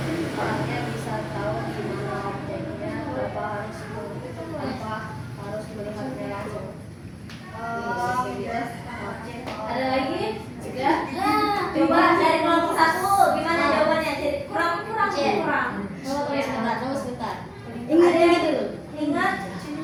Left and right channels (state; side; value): identical; both; correlation 1.00